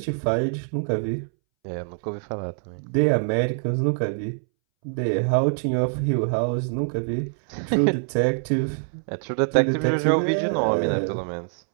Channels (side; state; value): left; silent; 62 dB below the other